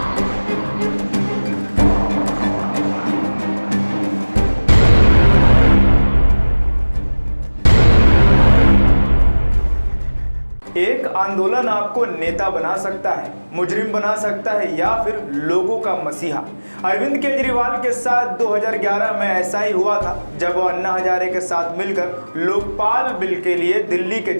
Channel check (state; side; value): inverted; both; correlation -1.00